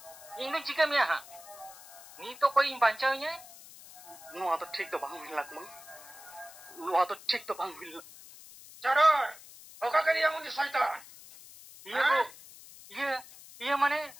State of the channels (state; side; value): noise; left; hiss, 18 dB below the sound